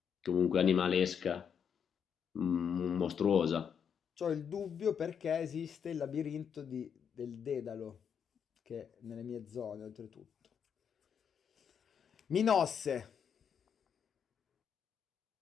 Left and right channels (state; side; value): quieter; right; 7.5 dB